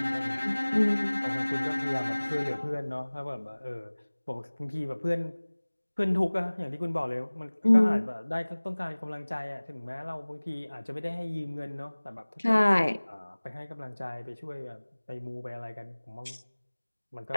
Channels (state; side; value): inverted; both; correlation -1.00